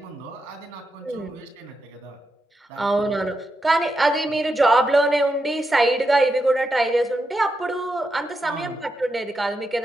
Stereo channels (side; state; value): both; normal; correlation 0.85